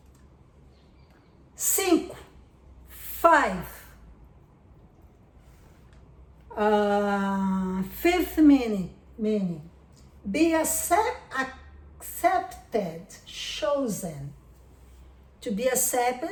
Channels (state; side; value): identical; both; correlation 1.00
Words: 5. Fifth meaning. Be accepted, chosen. To be